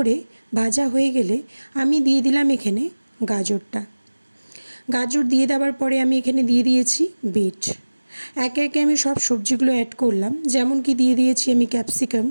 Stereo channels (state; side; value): inverted; both; correlation -1.00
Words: ভাজা হয়ে গেলে আমি দিয়ে দিলাম এখানে গাজরটা। গাজর দিয়ে দেওয়ার পরে আমি এখানে দিয়ে দিয়েছি বিট। একে একে আমি সব সবজিগুলো অ্যাড করলাম, যেমন কি দিয়ে দিয়েছি আমি ক্যাপসিকাম।